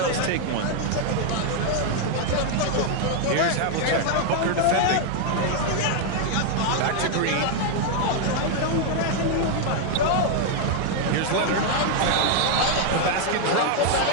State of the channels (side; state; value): both; different; correlation 0.00